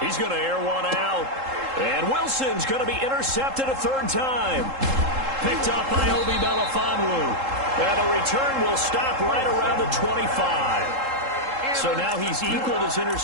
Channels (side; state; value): left; late; 3.7 ms